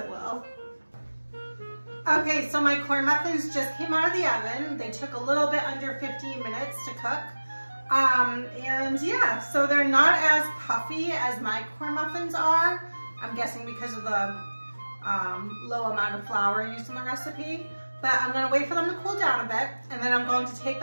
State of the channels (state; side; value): inverted; both; correlation -1.00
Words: will. Okay, so my corn muffins just came out of the oven. They took a little bit under 15 minutes to cook. And yeah, so they're not as puffy as my corn muffins are. I'm guessing because of the low amount of flour used in the recipe. But I'm gonna wait for them to cool down a bit, and then I'm going to take